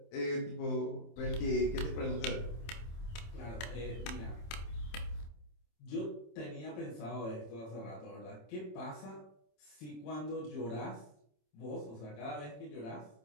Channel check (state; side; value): late; right; 27 ms